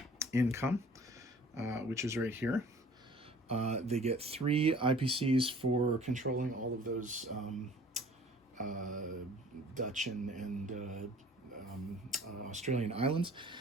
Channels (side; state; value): both; normal; correlation 0.50